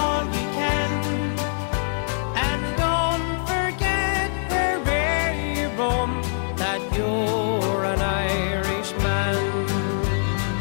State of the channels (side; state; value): right; silent; 63 dB below the other